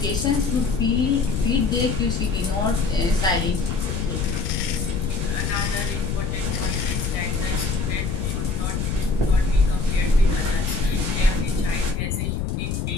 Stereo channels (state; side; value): noise; left; rumble, 1 dB below the sound